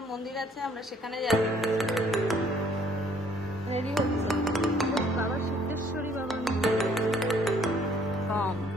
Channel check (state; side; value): normal; both; correlation 0.61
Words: মন্দির আছে আমরা সেখানে যাচ্ছি। রেডি হচ্ছে বাবা সিদ্ধেশ্বরী বাবার মন্দির। কম